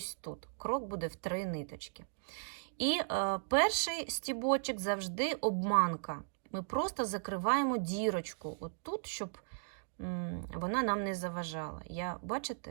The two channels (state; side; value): silent; left; digital silence